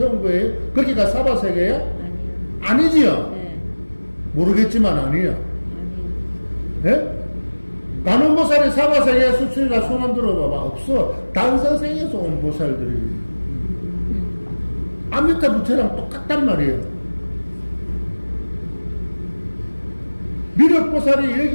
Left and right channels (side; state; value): both; inverted; correlation -1.00